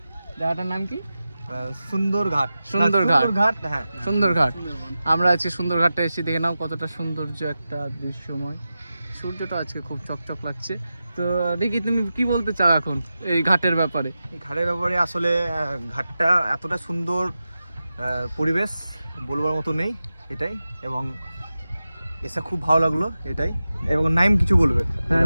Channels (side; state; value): both; inverted; correlation -0.93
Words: জায়গাটার নাম কি? সুন্দরঘাট। হ্যাঁ, সুন্দরঘাট। আমরা আজকে সুন্দরঘাটটা এসে দেখে নাও কতটা সৌন্দর্য একটা দৃশ্যময়। সূর্যটা আজকে খুব চকচক লাগছে। তো দেখি তুমি কি বলতে চাও এখন এই ঘাটের ব্যাপারে? এই ঘাটের ব্যাপারে আসলে ঘাটটা এতটা সুন্দর পরিবেশ বলবার মতো নেই, এটাই। এবং এসে খুব ভালো লাগলো, এটাই। এবং নাইম কিছু বলবে। হ্যাঁ